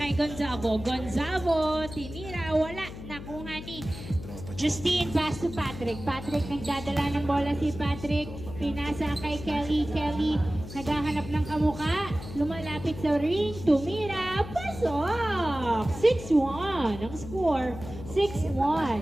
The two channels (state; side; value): noise; left; hum, 12 dB below the sound